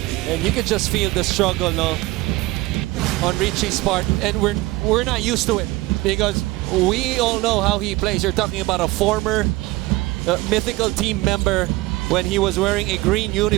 And you could just feel the struggle, no, on Richie's part, and we're not used to it because we all know how he plays. You're talking about a former mythical team member when he was wearing a green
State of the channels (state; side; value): quieter; left; 20.2 dB